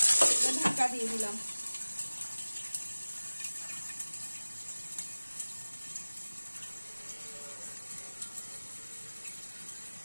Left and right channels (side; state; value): both; inverted; correlation -1.00